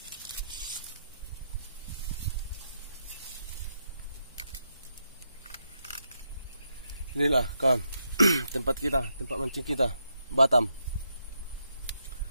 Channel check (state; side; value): inverted; both; correlation -0.81